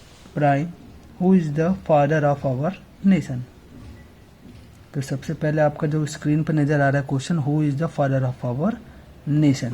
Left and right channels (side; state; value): both; identical; correlation 1.00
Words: prime? Who is the father of our nation? तो सबसे पहले आपका जो स्क्रीन पर नजर आ रहा है question, who is the father of our nation.